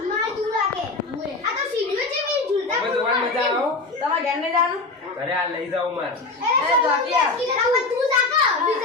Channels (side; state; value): right; quieter; 3.6 dB